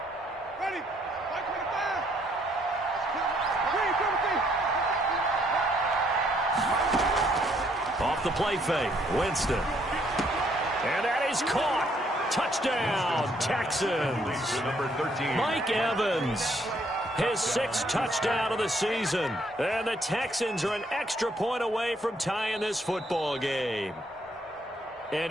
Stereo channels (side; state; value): both; normal; correlation 0.68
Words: Off the play fake, Winston. And that is caught. Touchdown, Texans. Number 13. Mike Evans, his 6th touchdown of the season. And the Texans are an extra point away from tying this football game. And